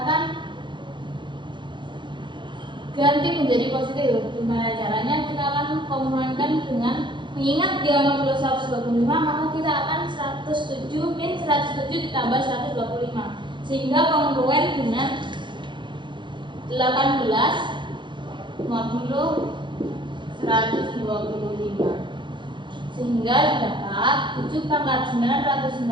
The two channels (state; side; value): late; left; 0.23 ms